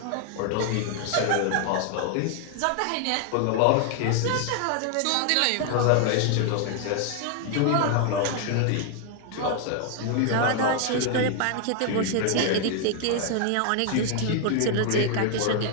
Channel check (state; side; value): different; both; correlation 0.00